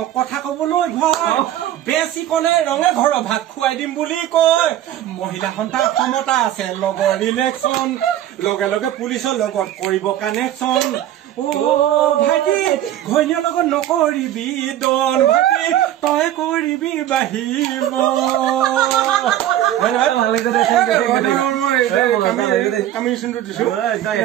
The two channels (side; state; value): left; quieter; 12.4 dB